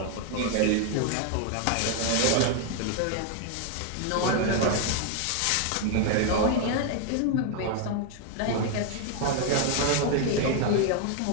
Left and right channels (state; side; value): different; both; correlation 0.00